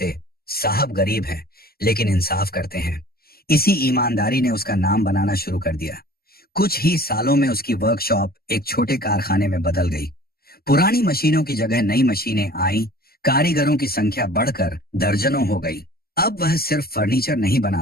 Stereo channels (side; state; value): right; late; 0.45 ms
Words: साहब गरीब हैं लेकिन इंसाफ करते हैं। इसी ईमानदारी ने उसका नाम बनाना शुरू कर दिया। कुछ ही सालों में उसकी वर्कशॉप एक छोटे कारखाने में बदल गई। पुरानी मशीनों की जगह नई मशीनें आई, कारीगरों की संख्या बढ़कर दर्जनों हो गई। अब वह सिर्फ फर्नीचर नहीं